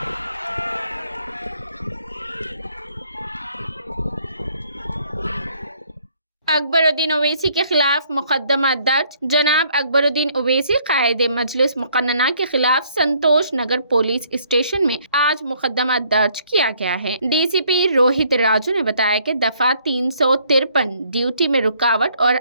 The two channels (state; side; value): inverted; both; correlation -0.65